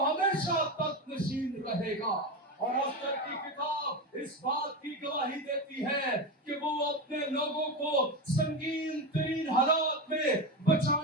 ہمیشہ تخت نشین رہے گا. اور آستر کی کتاب اس بات کی گواہی دیتی ہے کہ وہ اپنے لوگوں کو سنگین ترین حالات میں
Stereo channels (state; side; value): normal; both; correlation 0.18